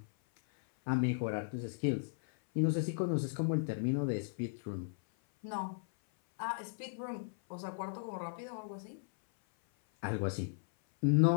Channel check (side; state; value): right; silent; 54 dB below the other